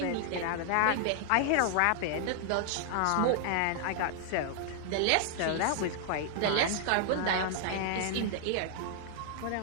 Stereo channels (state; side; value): different; both; correlation -0.01